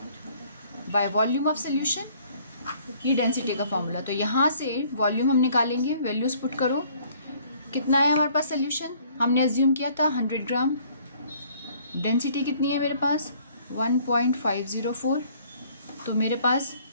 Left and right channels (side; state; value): both; inverted; correlation -0.59